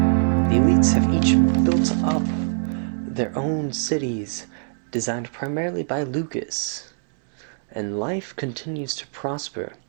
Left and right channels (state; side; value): silent; left; digital silence